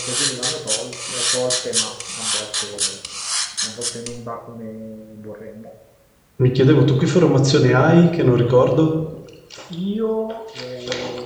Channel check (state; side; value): identical; both; correlation 1.00